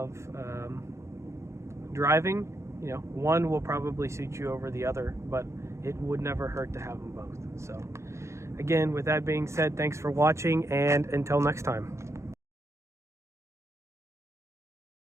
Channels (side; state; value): left; late; 0.14 ms